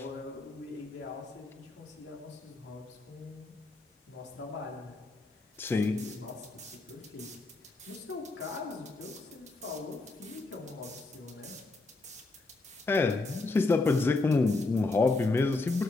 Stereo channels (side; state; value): right; quieter; 3.3 dB